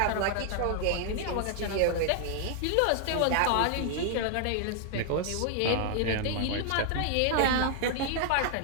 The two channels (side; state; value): both; different; correlation 0.00